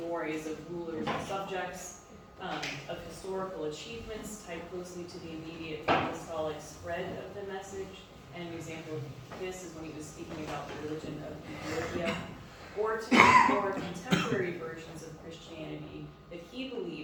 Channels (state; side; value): identical; both; correlation 1.00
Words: of rulers and subjects, of historical achievements tied closely to the immediate apostolic spread of the message. And an example of this is when he was speaking about the religion of Ethiopia, or to more contemporary versions of Christianity that he